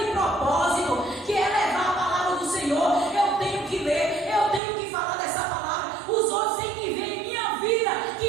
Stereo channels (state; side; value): drops out; left; at 4.6 s